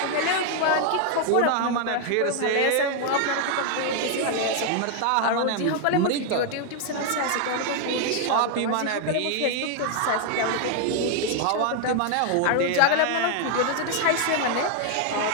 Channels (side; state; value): both; different; correlation 0.00